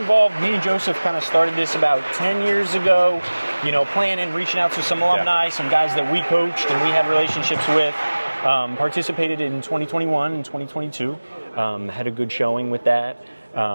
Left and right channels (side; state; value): both; inverted; correlation -1.00